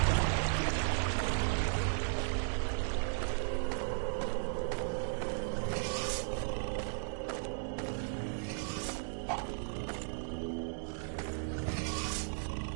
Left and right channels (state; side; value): silent; left; digital silence